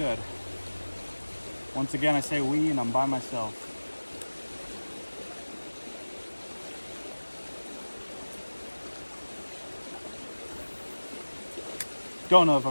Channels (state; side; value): inverted; both; correlation -1.00